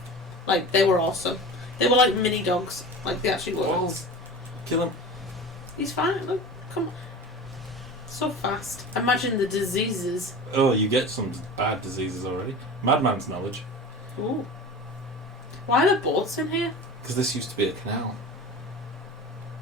Like, they were awesome. They were like mini dogs. Like, they actually were. Oh. Kill him. He's fine. Look, come on. So fast. Imagine the diseases. Oh, you get some bad diseases already. Madman's knowledge. Ooh. Why are there boats in here? Because this used to be a canal.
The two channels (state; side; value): normal; both; correlation 0.33